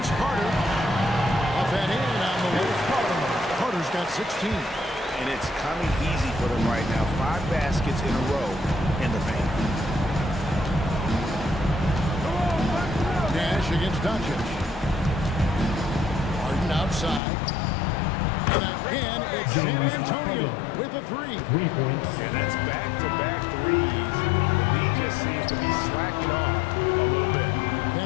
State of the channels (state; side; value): drops out; right; at 17.2 s